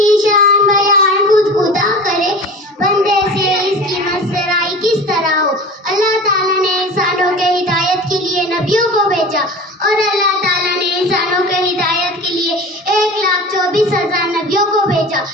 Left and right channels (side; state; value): both; normal; correlation 0.35